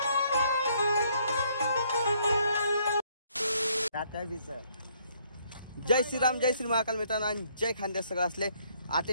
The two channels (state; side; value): inverted; both; correlation -0.67